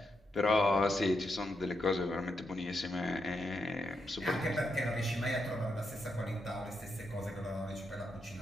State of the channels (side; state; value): both; normal; correlation 0.83